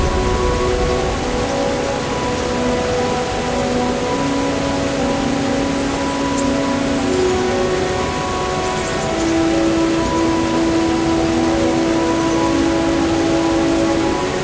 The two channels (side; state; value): both; identical; correlation 1.00